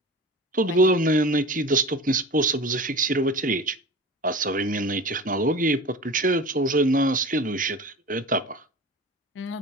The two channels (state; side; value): normal; both; correlation 0.35